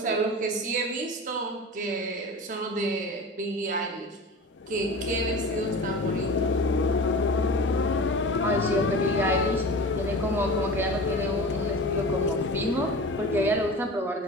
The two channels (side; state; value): both; normal; correlation 0.33